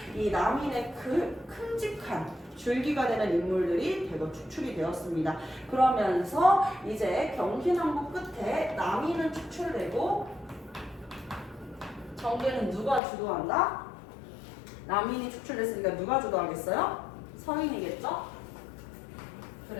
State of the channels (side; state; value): right; drops out; at 13.0 s